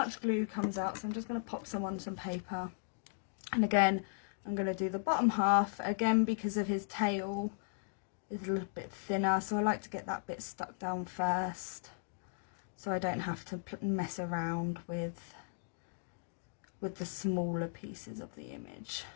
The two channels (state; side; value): silent; right; digital silence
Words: glue comes out, so I'm just going to pop some on some paper. And again, I'm going to do the bottom half again because of his tail is a little bit thinner, so I like to get that bit stuck down first so I don't have to mess around with the smaller pieces of the image,